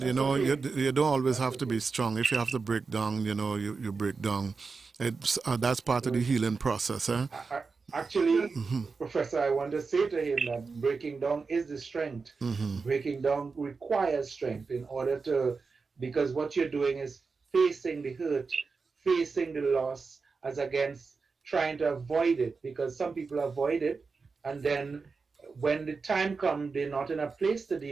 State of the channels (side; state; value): left; quieter; 4.6 dB